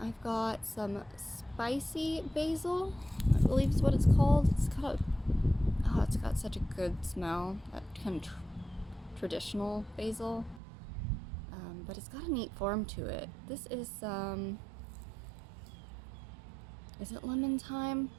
got some spicy basil, I believe is what it's called. It's got such a good smell, that kind of traditional basil. But it's got a neat form to it. This is it lemon thyme?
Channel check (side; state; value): left; drops out; at 10.6 s